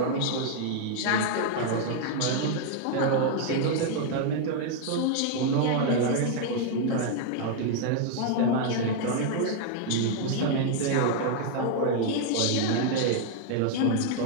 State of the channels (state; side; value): different; both; correlation 0.00